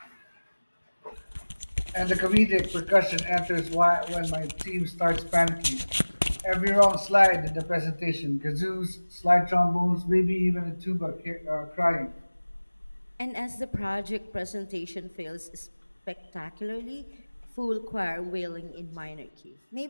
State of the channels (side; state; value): both; inverted; correlation -1.00